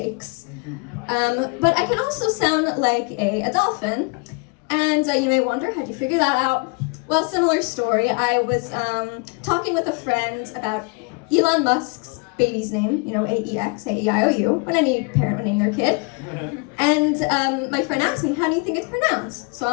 But I can also sound like a dolphin. And you may wonder, how'd you figure that out? Well, similar story. I was talking with a friend about Elon Musk's baby's name, AEX, A-E-I-O-U, when any parent would name their kid. And my friend asked me, how do you think it's pronounced? So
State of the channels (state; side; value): quieter; right; 31.1 dB